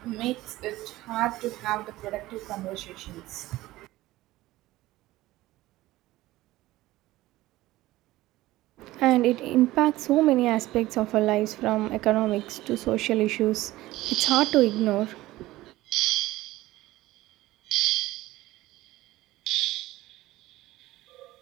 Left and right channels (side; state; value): left; quieter; 17.2 dB